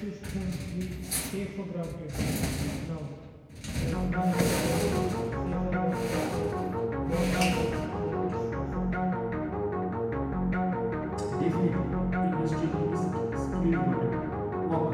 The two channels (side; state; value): both; identical; correlation 1.00